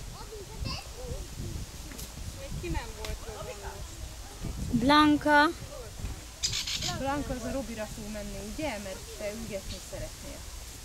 Még ki nem volt rövonnos. Blanka. Blanka az a Robira fog menni, ugye? Mert te ügetni szeretnél.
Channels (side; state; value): both; identical; correlation 1.00